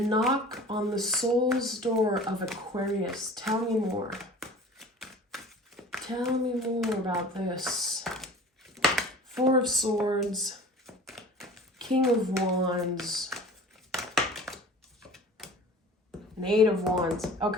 on the soul's door of Aquarius. Tell me more. Tell me more about this. 4 of Swords, King of Wands, and 8 of Wands.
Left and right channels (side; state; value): both; normal; correlation 0.42